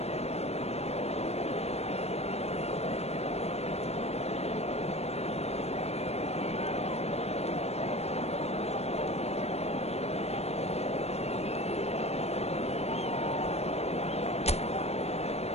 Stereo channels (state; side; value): late; right; 0.31 ms